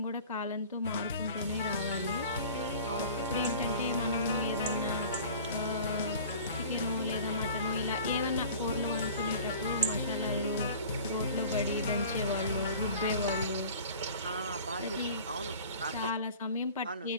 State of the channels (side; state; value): both; inverted; correlation -0.44